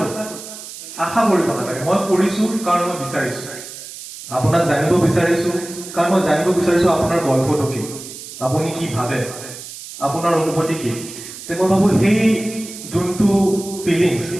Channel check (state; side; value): noise; right; hiss, 13 dB below the sound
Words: আশা কৰিব নালাগে। মই কৰিছোঁ কাৰণ মই বিচাৰিছোঁ। আপোনাক জানিব বিচাৰিছোঁ কাৰণ মই জানিব বিচাৰিছোঁ আপোনাৰ গল্পটো কি, আপুনি কি ভাবে, আপোনাৰ অনুভূতি কি। মই ভাবোঁ সেই যোনটো ফিলিংছ,